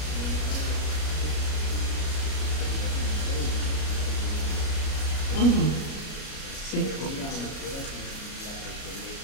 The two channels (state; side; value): late; right; 33 ms